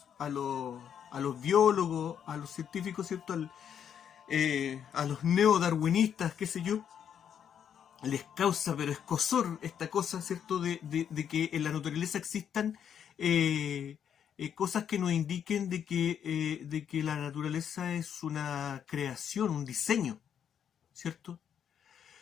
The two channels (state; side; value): quieter; right; 8.6 dB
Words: biólogos, a los científicos, ¿cierto? A los neodarwinistas, qué sé yo, les causa pero escozor esta cosa, ¿cierto? De que en la naturaleza existan cosas que nos indiquen de que la naturaleza es una creación, un diseño, ¿cierto?